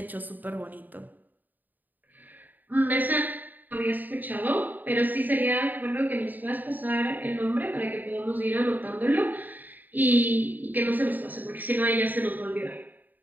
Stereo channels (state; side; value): late; left; 0.087 ms